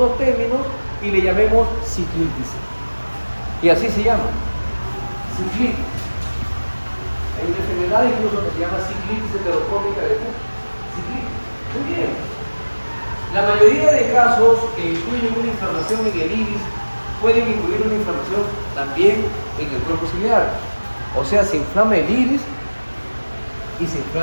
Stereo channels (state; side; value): inverted; both; correlation -1.00